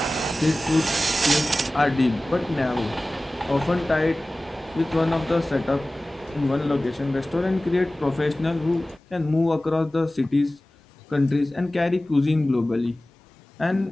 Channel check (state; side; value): normal; both; correlation 0.97